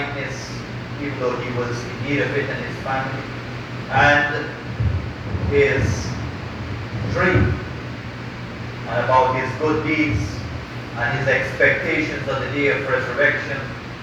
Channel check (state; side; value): identical; both; correlation 1.00